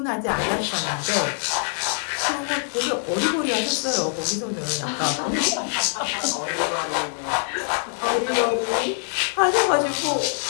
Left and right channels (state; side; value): silent; right; digital silence